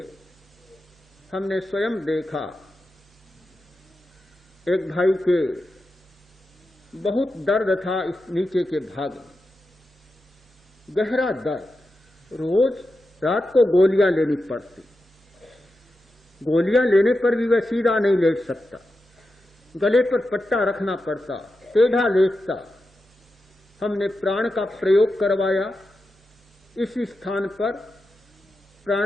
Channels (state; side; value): normal; both; correlation 0.90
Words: हमने स्वयं देखा, एक भाई के बहुत दर्द था इस नीचे के भाग में, गहरा दर्द, रोज रात को गोलियां लेनी पड़ती। गोलियां लेने पर भी वह सीधा नहीं लेट सकता, गले पर पट्टा रखना पड़ता, टेढ़ा लेटता। हमने प्राण का प्रयोग करवाया, इसी स्थान पर